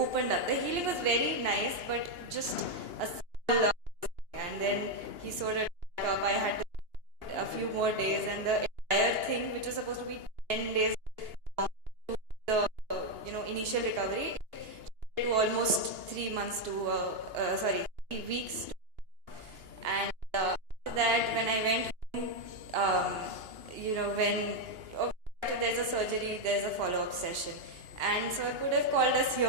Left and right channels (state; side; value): late; left; 2.9 ms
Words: up. The healing was very nice, but just a small and then he sewed it back up. I had to a few more days, and the entire thing, which was supposed to be 10 days long, the initial recovery, to almost 3 months to 3 weeks. And after that, when I went home, when after there's a surgery, there's a follow-up session, and so I could have called us